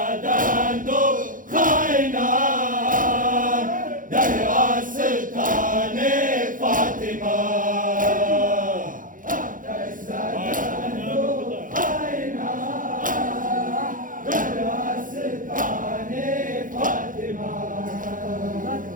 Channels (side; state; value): left; late; 0.39 ms